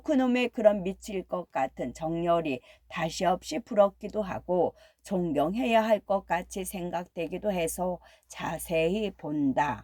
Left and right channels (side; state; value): both; identical; correlation 1.00